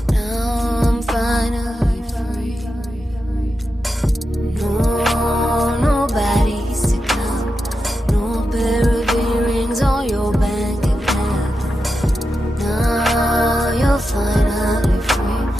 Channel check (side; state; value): both; normal; correlation 0.89